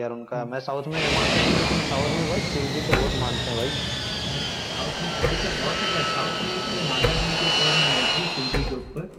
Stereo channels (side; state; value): both; identical; correlation 1.00